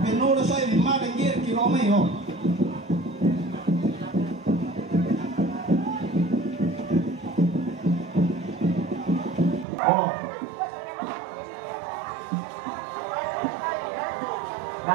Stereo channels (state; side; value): drops out; left; at 9.7 s